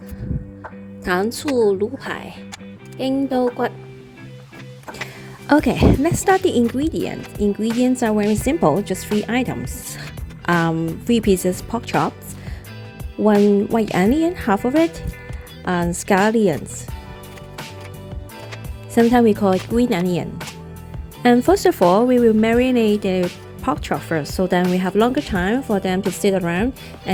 糖醋卤排, 英刀骨. Okay, let's start the ingredients. Ingredients are very simple, just 3 items. 3 pieces pork chops, 1 white onion, half of it, and scallions. Sometimes we call it green onion. And first of all, we will marinate the pork chop first, so then we have longer time for them to sit around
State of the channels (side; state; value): both; identical; correlation 1.00